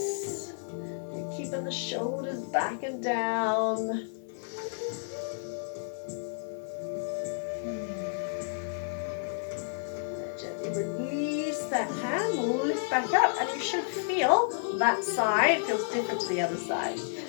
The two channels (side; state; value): right; silent; digital silence